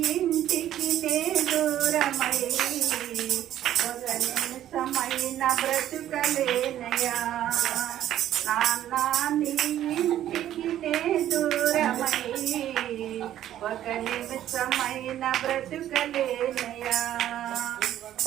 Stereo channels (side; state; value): left; quieter; 12.0 dB